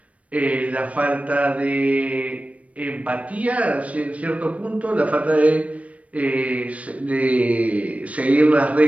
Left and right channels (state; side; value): late; left; 0.065 ms